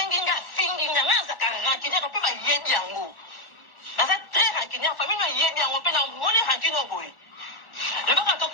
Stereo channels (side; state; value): right; late; 1.1 ms